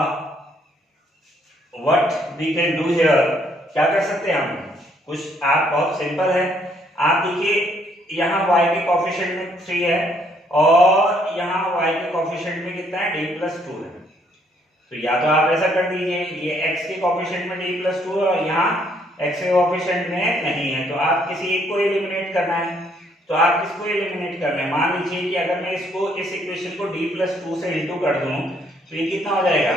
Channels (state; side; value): normal; both; correlation 0.68